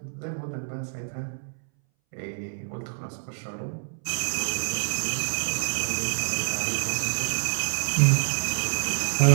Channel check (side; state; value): left; silent; 59 dB below the other